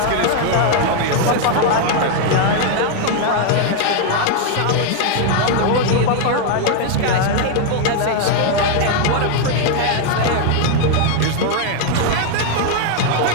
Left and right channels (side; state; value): both; different; correlation 0.01